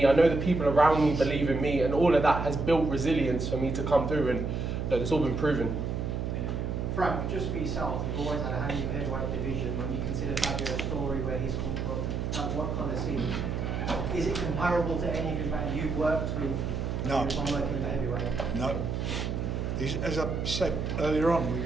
I know the people around me believe in me, and all of that has built resilience for me to come through, and look, it's all been proven. Frank, just for yourself, you've always had a hand in the heavyweight division. When you consider Fabio's story, where he's come from, what kind of scene? Is it comparable to any of the you've worked with? No. On working with heavyweight? No. As I said earlier on,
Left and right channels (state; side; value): noise; right; hum, 2 dB below the sound